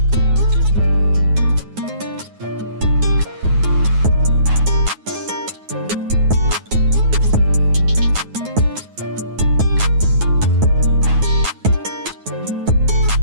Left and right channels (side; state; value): left; late; 9.4 ms